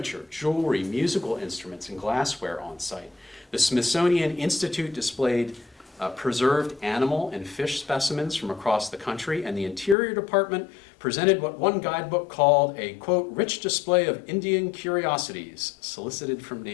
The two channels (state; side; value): drops out; right; at 10.0 s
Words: jewelry, musical instruments, and glassware on site. The Smithsonian Institute displayed preserved animal and fish specimens from across the country, and the Interior Department presented what one guidebook called a, quote, rich display of Indian curiosities solicited from